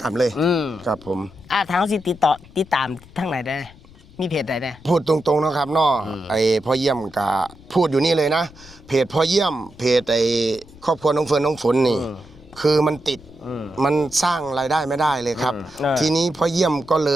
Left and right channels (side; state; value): left; noise; rumble, 23 dB below the sound